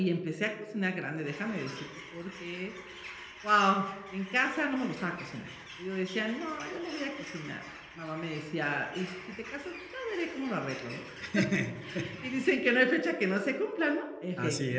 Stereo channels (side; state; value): both; identical; correlation 1.00